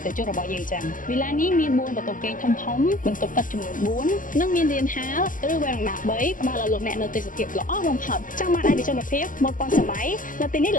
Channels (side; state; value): right; late; 0.38 ms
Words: ិថិជនរបស់យើងចឹងវិឡានេះមាន4បន្ទប់គេងធំបន្ទប់ទឹកចំនួន4និងមានរានហាលឬវ៉ែរ៉ាដា3ផ្ដល់ឲ្យលោកអ្នកនៅទេសភាពល្អបំផុតចង់បានឯកជនភាពមុនប៉ុនសម័យនៅទីនេះ